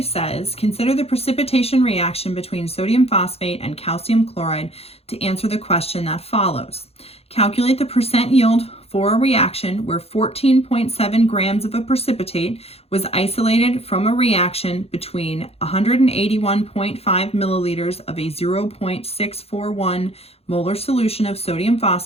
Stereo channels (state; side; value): late; right; 0.29 ms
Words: says, consider the precipitation reaction between sodium phosphate and calcium chloride to answer the question that follows. Calculate the percent yield for a reaction where 14.7 grams of a precipitate was isolated from a reaction between 181.5 milliliters of a 0.641 molar solution of sodium